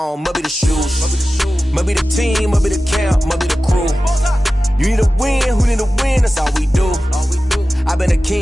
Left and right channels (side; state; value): both; normal; correlation 0.95